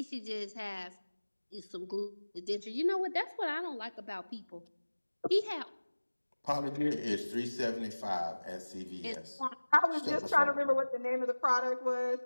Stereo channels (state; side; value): inverted; both; correlation -1.00